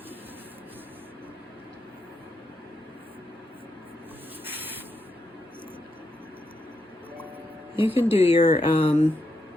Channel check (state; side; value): normal; both; correlation 0.82